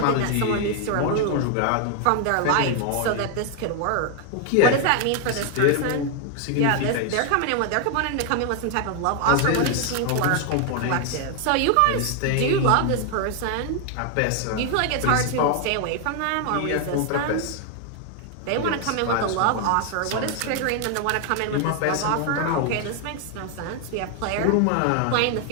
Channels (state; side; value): different; both; correlation 0.00